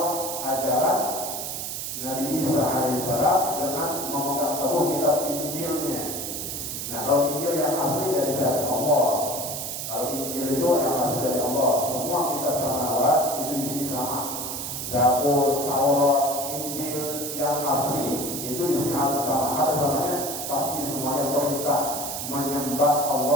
ajaran Nabi Isa alaihissalam dengan memegang teguh kitab Injilnya. Nah, kalau Injil yang asli dari siapa? Allah. Kalau Injil itu yang asli dari Allah. Semua kitab samawat itu di sini sama. Zabur, Taurat, Injil yang asli itu di sini sama. Apa samanya? Pasti semuanya perintah menyembah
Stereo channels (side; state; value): right; noise; hiss, 5 dB below the sound